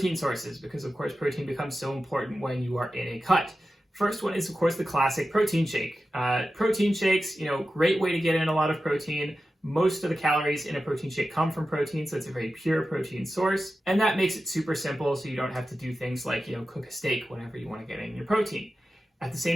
sources, because of course protein becomes so important when you are in a cut. First one is of course the classic protein shake. Protein shakes, great way to get in a lot of protein. Most of the calories in a protein shake come from protein, so it's a very pure protein source. And that makes it super simple, so you don't have to do things like, cook a steak whenever you want to get in your protein. At the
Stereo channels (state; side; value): normal; both; correlation 0.93